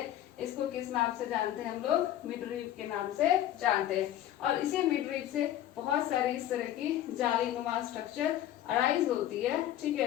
इसको किस नाम से जानते हैं हम लोग? मिडरीप के नाम से जानते हैं। और इसी मिडरीप से बहुत सारी इस तरह की जालीनुमा स्ट्रक्चर अराइज होती है। ठीक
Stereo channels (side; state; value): right; quieter; 12.3 dB